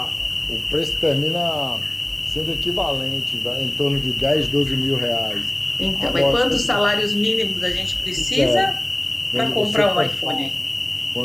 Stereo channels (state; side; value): noise; right; hum, 27 dB below the sound